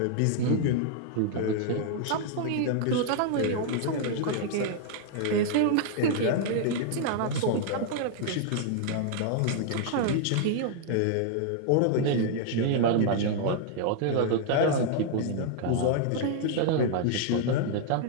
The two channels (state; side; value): different; both; correlation -0.01